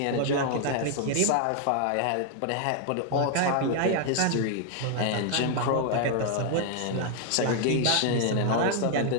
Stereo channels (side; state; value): both; different; correlation 0.00